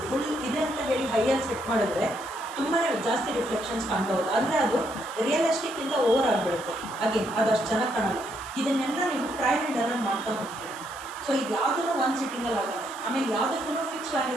ಫುಲ್ ಇದೆ ಅಂತ ಹೇಳಿ ಹೈಯಲ್ಲಿ ಸೆಟ್ ಮಾಡಿದ್ರೆ ತುಂಬಾ ಜಾಸ್ತಿ ರಿಫ್ಲೆಕ್ಷನ್ಸ್ ಕಾಣ್ತಾ ಹೋಗುತ್ತೆ, ಅಂದರೆ ಅದು ರಿಯಲಿಸ್ಟಿಕ್ಕಿಂತ ಓವರ್ ಆಗಿಬಿಡುತ್ತೆ. ಹಾಗೆ ಅದಷ್ಟು ಚೆನ್ನಾಗಿ ಕಾಣಲ್ಲ. ಇದನ್ನೆಲ್ಲ ನೀವು ಟ್ರಯಲ್ ಆ್ಯಂಡ್ ಎರರ್ ಮಾಡ್ತಾ ಹೋಗ್ತೀರಿ. ಸೊ ಇದು ಯಾವುದೂ ಒಂದು ಸಿಟ್ಟಿಂಗಲ್ಲಿ ಆಗಲ್ಲ, ಆಮೇಲೆ ಯಾವುದಕ್ಕೂ ಫಿಕ್ಸ್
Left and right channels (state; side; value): noise; right; hiss, 17 dB below the sound